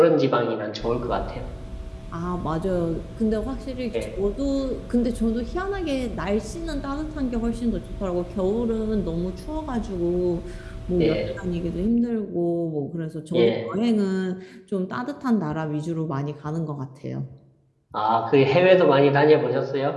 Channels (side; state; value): both; identical; correlation 1.00